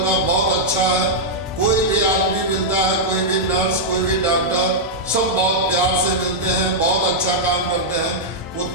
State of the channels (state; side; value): normal; both; correlation -0.06